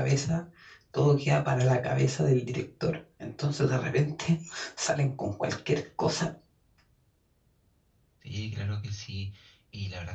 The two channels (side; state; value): both; identical; correlation 1.00